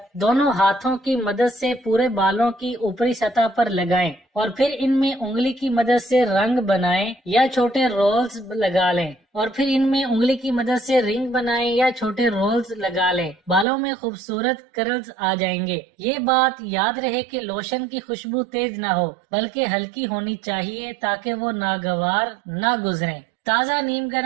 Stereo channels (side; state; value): left; drops out; at 13.7 s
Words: दोनों हाथों की मदद से पूरे बालों की ऊपरी सतह पर लगाएं और फिर इनमें उंगली की मदद से रंग बनाएं या छोटे रोल्स लगा लें और फिर इनमें उंगली की मदद से रिंग बनाएं या छोटे रोल्स लगा लें। बालों में खूबसूरत कर्ल्स आ जाएंगे। ये बात याद रहे कि लोशन की खुशबू तेज ना हो बल्कि हल्की होनी चाहिए ताकि वो नागवार ना गुजरे। ताज़ा नीम